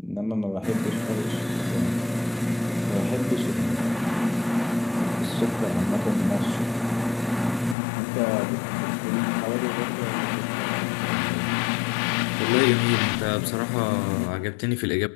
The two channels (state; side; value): drops out; right; at 7.8 s